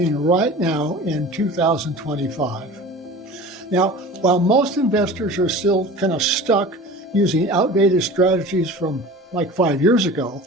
right now in 2025? Now, while most investors are still kind of stuck using outdated strategies from like 5 years ago,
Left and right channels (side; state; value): both; normal; correlation 0.38